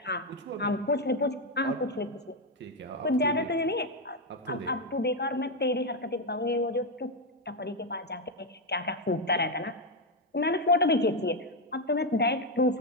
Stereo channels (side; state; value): both; normal; correlation 0.05